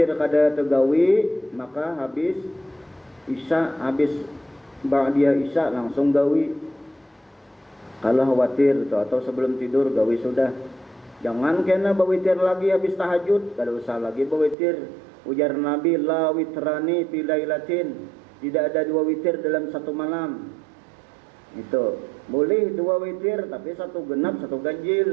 kada tergawi, maka habis isya, habis ba'diyah isya langsung gawi. Kalau khawatir itu, atau sebelum tidur gawi sudah. Jangan kena berwitir lagi habis tahajud, kada usah lagi berwitir. Ujar Nabi, la witrani fi lailatin, tidak ada 2 witir dalam 1 malam. Itu boleh 2 witir tapi 1 genap 1 ganjil.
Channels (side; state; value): left; drops out; at 14.6 s